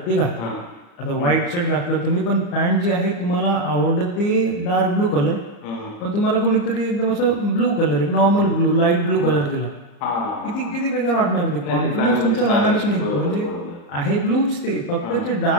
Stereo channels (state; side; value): late; right; 34 ms